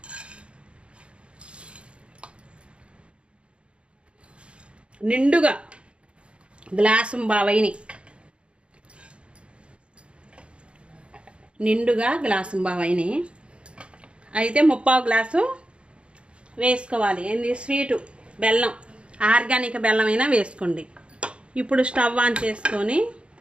నిండుగా గ్లాసు బావైని, అయితే 3/4 గ్లాసు వేసుకోవాలి. ఏంది స్వీటు బెల్లం, ఆర్గానిక్ బెల్లం అయినా వేసుకోండి. ఇప్పుడు స్టవ్ ఆన్ చేసుకొని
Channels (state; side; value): late; left; 0.058 ms